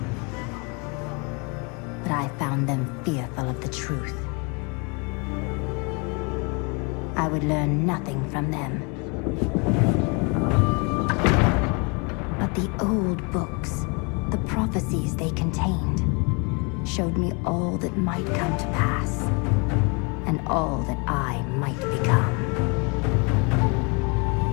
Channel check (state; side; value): quieter; right; 32.2 dB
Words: But I found them fearful of the truth. I would learn nothing from them. But the old books, the prophecies they contained, showed me all that might come to pass, and all that I might become.